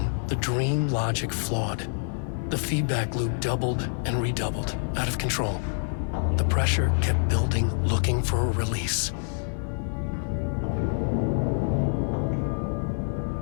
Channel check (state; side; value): silent; right; 57 dB below the other